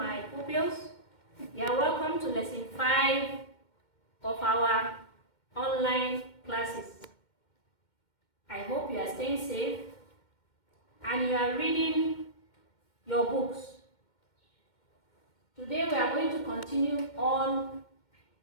pupils. You are welcome to lesson 5 of our online classes. I hope you are staying safe and you are reading your books. Today we are going to continue on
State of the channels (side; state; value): right; late; 2.1 ms